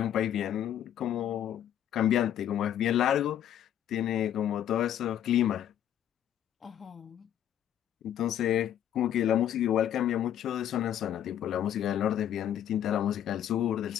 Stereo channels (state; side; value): quieter; right; 10.6 dB